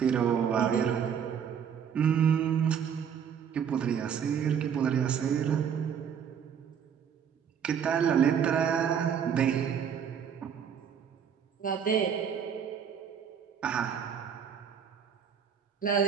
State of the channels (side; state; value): left; quieter; 7.8 dB